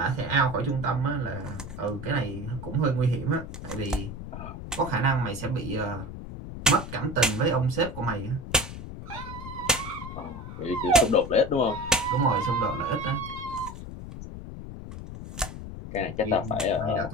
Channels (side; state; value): left; noise; rumble, 10 dB below the sound